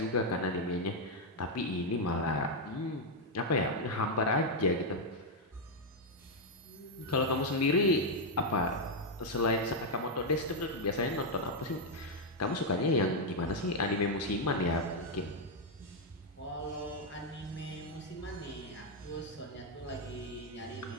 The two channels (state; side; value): normal; both; correlation 0.00